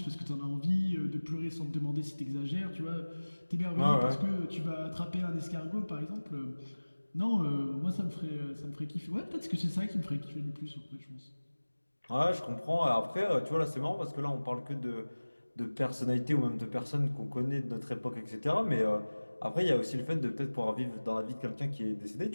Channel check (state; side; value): inverted; both; correlation -1.00